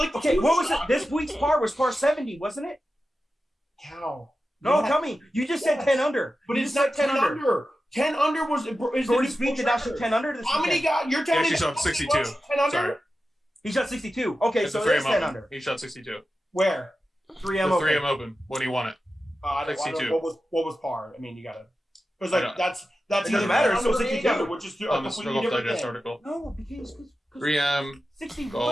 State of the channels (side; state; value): both; normal; correlation 0.92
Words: Okay, two what was it? shots? This week's par was par 70, wasn't it? Cow. No, Yeah. tell me. You just said Yes. 10 under. But You it's just not said 10 under. 10 under was. Is Jordan the Spieth did not shoot 10 under this How many weekend. guys? You're telling He me actually that shot 62. 10 under? Sorry. He shot 62. Okay, It's so the it is 3M 10 Open. under. He shot 62. Where? 3M The open. 3M Open when he won it. I don't 62. know what was par. I mean, you gotta. Because I like don't- that's It doesn't either matter, 10 it's still under or 62. 8 under, which is a On the completely Golf different Digest thing. article. No, because 3M. 61